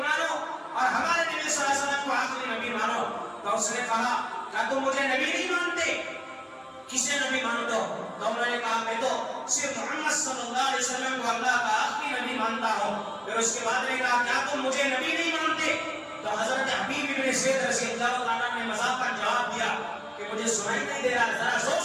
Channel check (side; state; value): both; identical; correlation 1.00